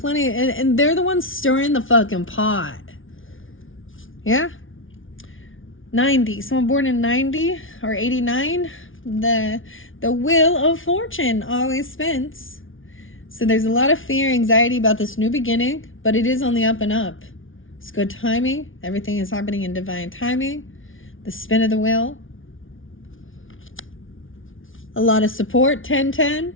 and they're the ones stirring the fucking pot. Yeah? 90. Someone born in 90 or 89. The wheel of fortune always spins. So there's a lot of fear, anxiety about this new beginning, but it is on the up and up. It's good timing. Everything is happening in divine timing. The spin of the wheel. A lot of support, 10-10.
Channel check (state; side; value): late; right; 0.57 ms